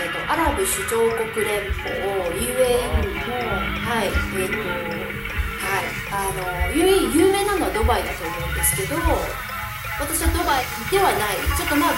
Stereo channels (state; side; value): identical; both; correlation 1.00